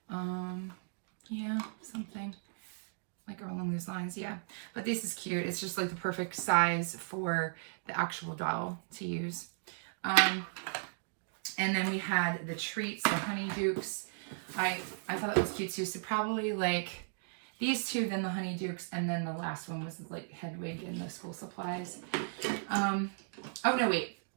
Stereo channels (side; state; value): left; silent; digital silence